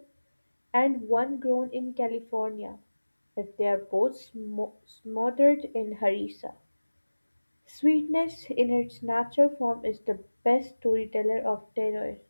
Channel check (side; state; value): both; inverted; correlation -1.00